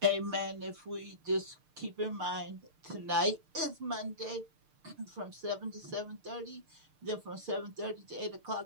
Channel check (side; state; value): left; late; 6.6 ms